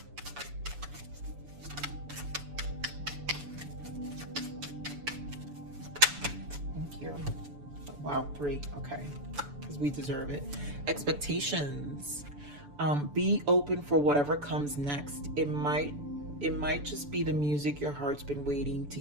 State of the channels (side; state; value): left; late; 6.9 ms